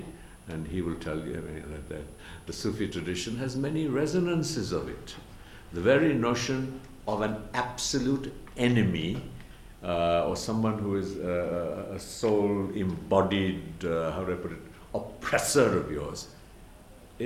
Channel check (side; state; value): both; identical; correlation 1.00